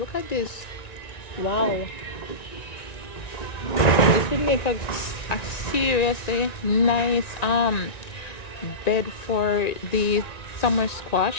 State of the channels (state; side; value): late; right; 1.9 ms